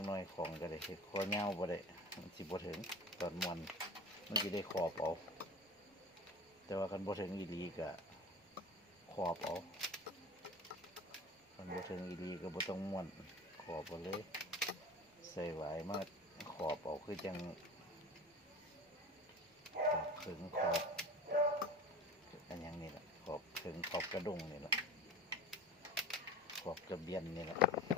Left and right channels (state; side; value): normal; both; correlation 0.35